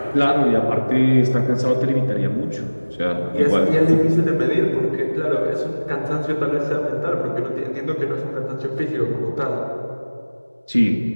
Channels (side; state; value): both; inverted; correlation -1.00